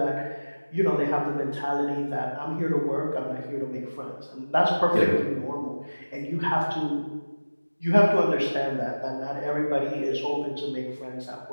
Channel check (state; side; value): inverted; both; correlation -1.00